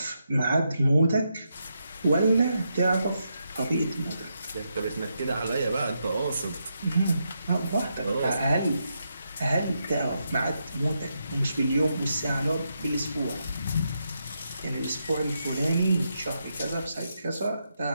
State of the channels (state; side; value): inverted; both; correlation -0.82